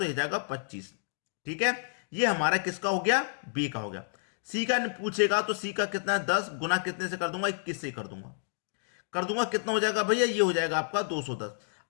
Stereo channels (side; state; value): right; silent; digital silence